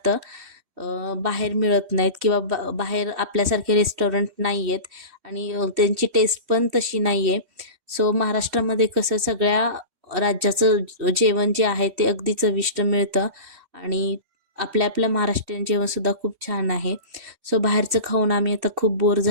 बाहेर मिळत नाहीत किंवा बाहेर आपल्यासारखे रेस्टॉरंट नाही आहेत आणि त्यांची टेस्ट पण तशी नाही आहे. सो महाराष्ट्रामध्ये कसं सगळ्या राज्याचं जेवण जे आहे ते अगदी चविष्ट मिळतं आणि आपल्या आपलं महाराष्ट्रीयन जेवणसुद्धा खूप छान आहे. सो बाहेरचं खाऊन आम्ही आता खूप बोर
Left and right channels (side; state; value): left; late; 3.1 ms